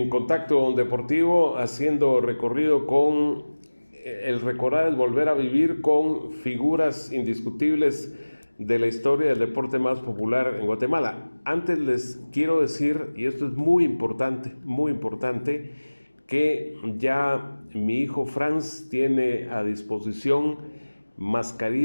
Contacto Deportivo haciendo recorrido con el recordar es volver a vivir con figuras indiscutibles de la historia del deporte más popular en Guatemala. Antes les quiero decir, y esto es muy importante, que ya mi hijo Franz tiene a disposición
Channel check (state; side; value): inverted; both; correlation -1.00